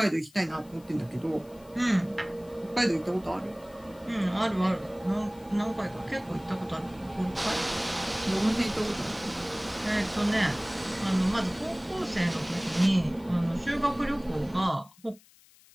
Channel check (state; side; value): noise; left; hiss, 27 dB below the sound